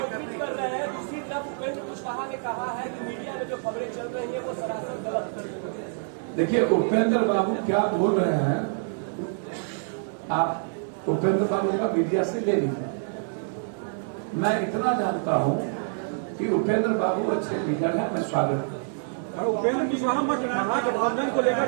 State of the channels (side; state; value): left; silent; digital silence